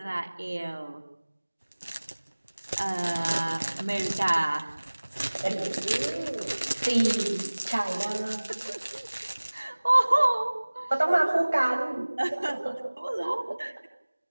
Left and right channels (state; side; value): inverted; both; correlation -1.00